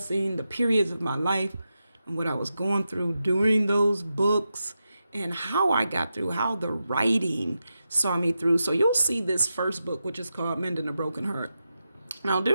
the periods of my life and what I was going through during those books and how I got through, how the writing saw me through. So you'll see this first book, which is called Mending a Broken Heart. Now,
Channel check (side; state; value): both; inverted; correlation -0.89